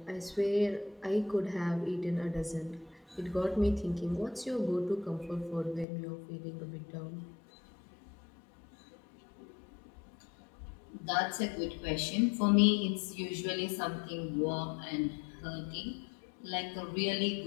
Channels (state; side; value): drops out; right; at 5.9 s